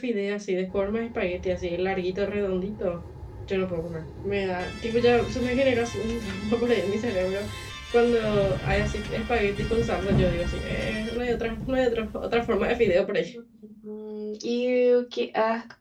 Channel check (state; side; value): identical; both; correlation 1.00